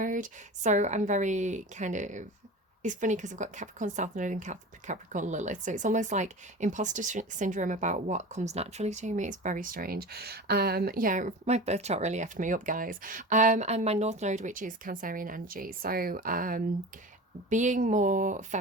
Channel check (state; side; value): normal; both; correlation 0.33